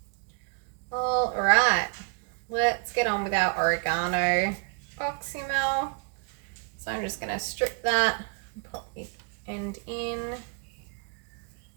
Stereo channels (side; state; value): left; quieter; 39.8 dB